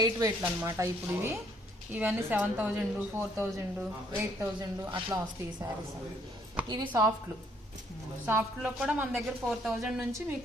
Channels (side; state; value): both; normal; correlation 0.66